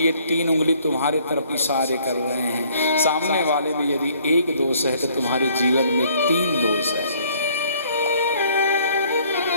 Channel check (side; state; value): both; inverted; correlation -0.61